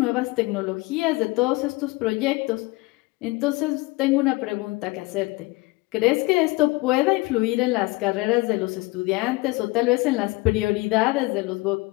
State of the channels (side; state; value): right; quieter; 22.8 dB